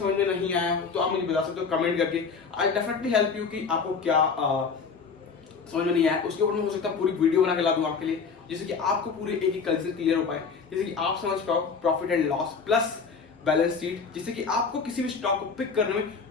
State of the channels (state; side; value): quieter; right; 5.3 dB